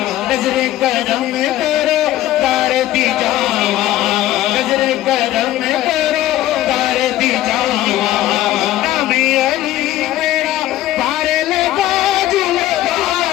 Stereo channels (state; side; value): quieter; right; 14.4 dB